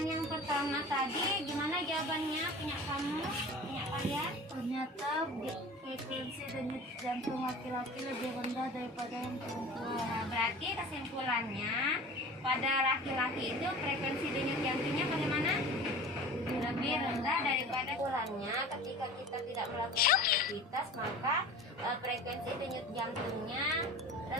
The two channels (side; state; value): both; normal; correlation 0.39